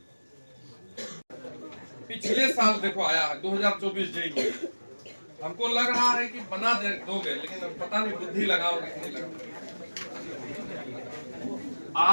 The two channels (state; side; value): inverted; both; correlation -1.00